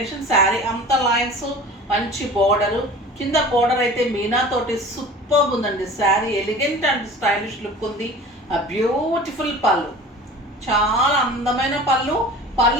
sari అంతా లైన్స్, మంచి బోర్డరు. కింద బోర్డర్ అయితే మీనా తోటి సూపర్బ్ ఉందండి. Sari elegant and stylish look ఉంది. ఆ బ్యూటిఫుల్ పళ్ళు, చాలా అందమైన పళ్ళు.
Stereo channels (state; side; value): normal; both; correlation 0.40